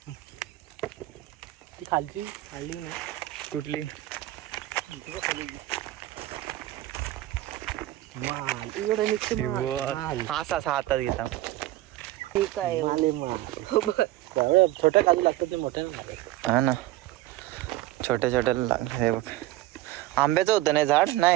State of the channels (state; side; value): quieter; left; 16.1 dB